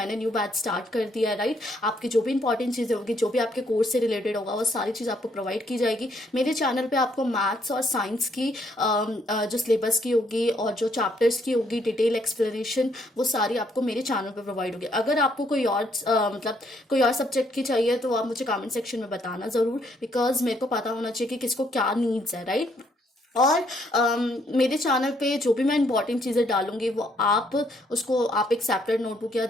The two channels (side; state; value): both; normal; correlation 0.70